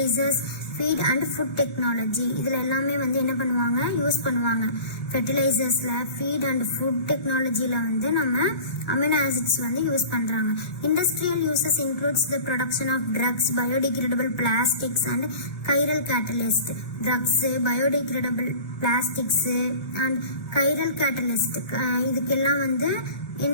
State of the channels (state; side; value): late; right; 1.6 ms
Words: feed and food technology. இதுல எல்லாமே வந்து என்ன பண்ணுவாங்க? Use பண்ணுவாங்க. ஃபெர்டிலைசர்ஸ்ல, feet and food டெக்னாலஜில வந்து நம்ம amino acids வந்து use பண்றாங்க. Industrial uses includes the production of drugs, biodegradable plastics and chiral catalyst. Drugs, biodegradable plastics and chiral catalyst இதுக்கெல்லாம் வந்து